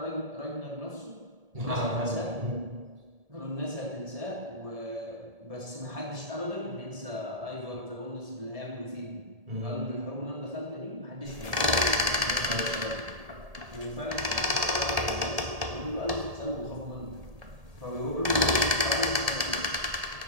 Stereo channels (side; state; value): left; late; 1.7 ms